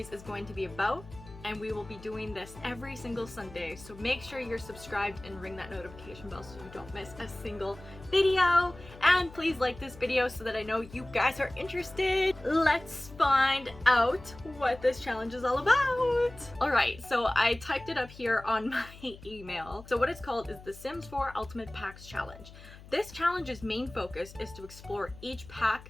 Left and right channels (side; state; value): left; noise; hum, 18 dB below the sound